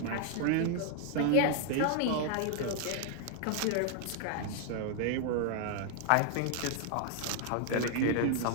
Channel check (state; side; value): different; both; correlation 0.00